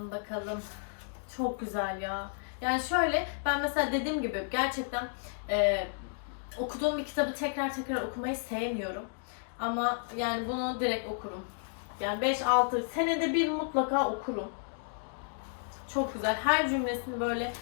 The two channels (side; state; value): right; silent; digital silence